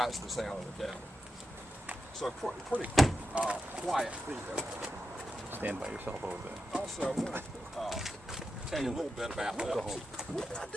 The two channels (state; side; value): normal; both; correlation 0.88